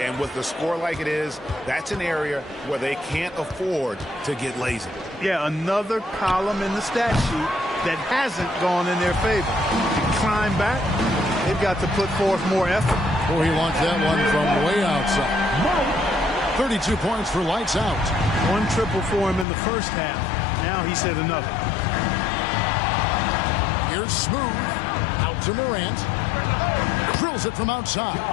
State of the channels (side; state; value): right; drops out; at 19.5 s